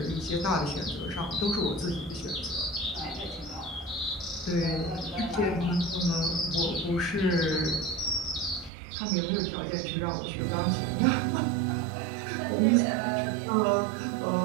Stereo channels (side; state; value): left; drops out; at 8.7 s